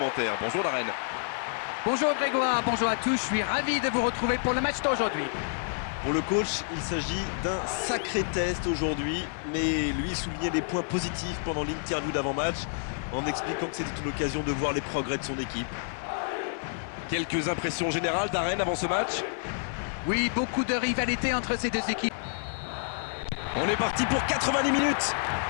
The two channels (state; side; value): silent; right; 59 dB below the other